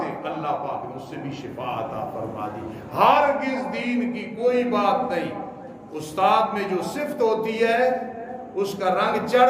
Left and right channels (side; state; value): both; identical; correlation 1.00